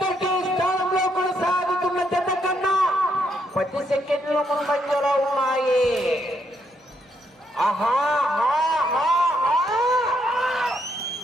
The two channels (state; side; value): normal; both; correlation 0.75